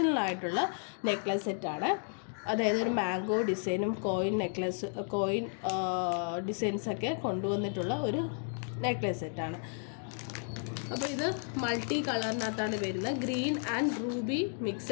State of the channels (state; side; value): silent; right; 56 dB below the other